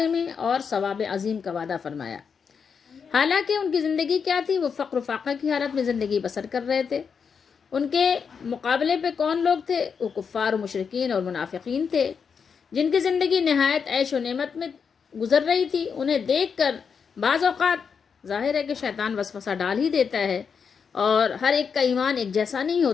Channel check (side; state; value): right; quieter; 6.3 dB